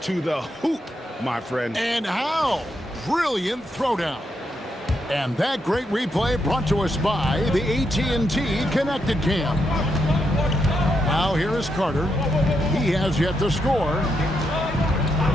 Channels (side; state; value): both; normal; correlation 0.81